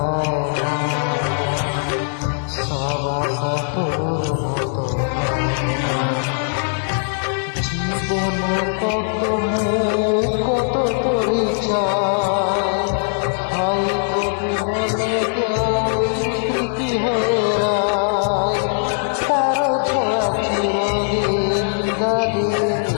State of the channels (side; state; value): right; silent; digital silence